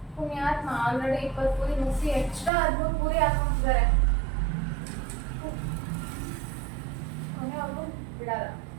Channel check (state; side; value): drops out; left; at 2.5 s